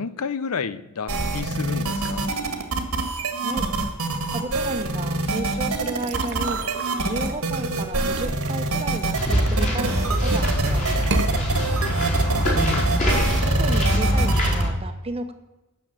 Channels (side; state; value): both; normal; correlation 0.49